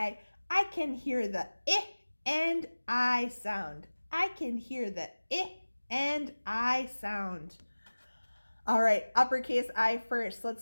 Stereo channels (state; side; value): inverted; both; correlation -1.00